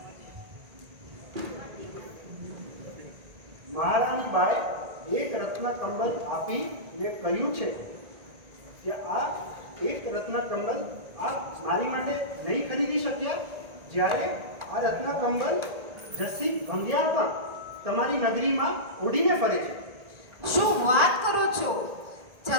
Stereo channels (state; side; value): late; left; 1.8 ms